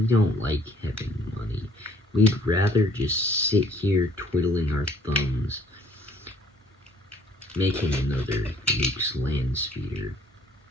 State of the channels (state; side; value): normal; both; correlation 0.58